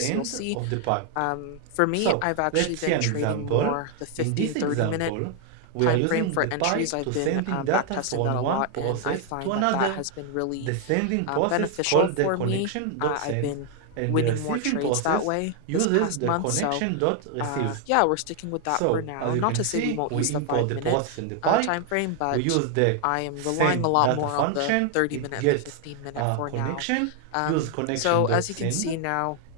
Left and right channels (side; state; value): both; different; correlation 0.00